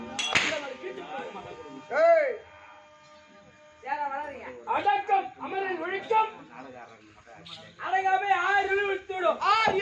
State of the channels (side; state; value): both; identical; correlation 1.00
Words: அடக்கம் அமரில் ஒழிக்கும் அடங்காமை 6 இருள் வைத்து விடும் 6